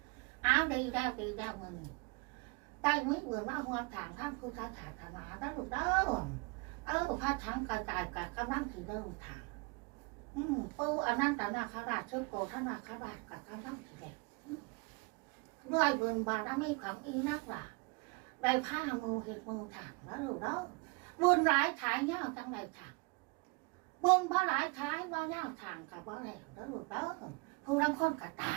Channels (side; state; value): left; quieter; 29.0 dB